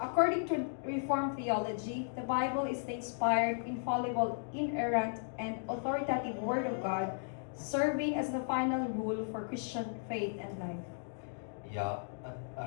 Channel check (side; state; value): right; silent; digital silence